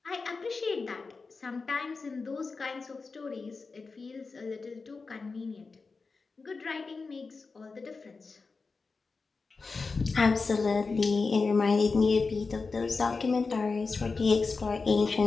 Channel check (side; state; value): right; quieter; 4.3 dB